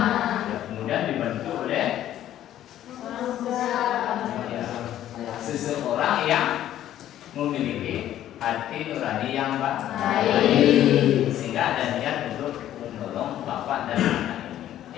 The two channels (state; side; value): quieter; right; 12.1 dB